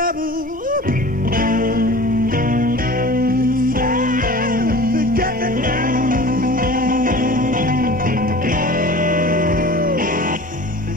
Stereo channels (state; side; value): normal; both; correlation 0.40